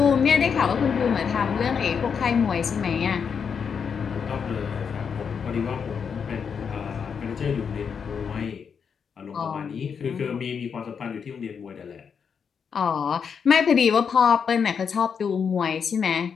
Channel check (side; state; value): right; quieter; 6.6 dB